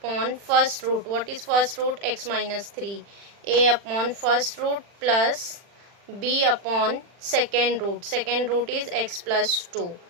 first root. What is first root? X minus 3. A upon first root plus b upon second root. Second root is x plus 2.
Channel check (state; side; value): late; left; 40 ms